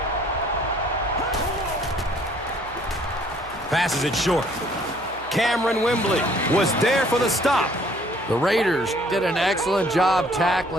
Passes it short. Cameron Wembley was there for the stop. The Raiders did an excellent job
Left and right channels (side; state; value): right; noise; hum, 21 dB below the sound